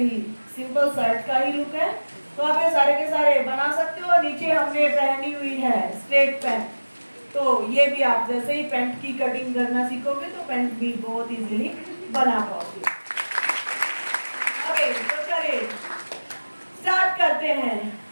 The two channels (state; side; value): inverted; both; correlation -1.00